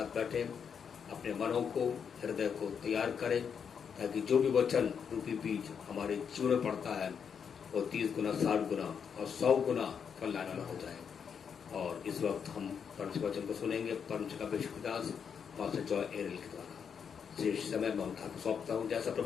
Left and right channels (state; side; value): quieter; right; 7.0 dB